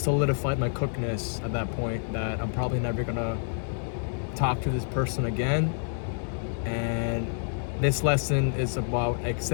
my cookness at that point, that I'm probably never gonna talk to this person again. And this lesson is about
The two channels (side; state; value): right; silent; digital silence